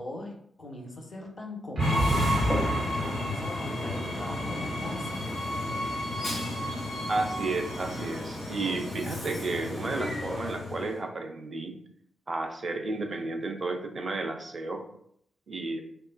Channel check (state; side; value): normal; both; correlation 0.81